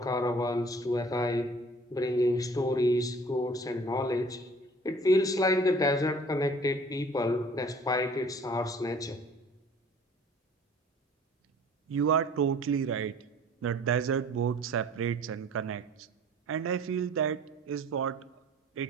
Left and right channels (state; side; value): normal; both; correlation 0.50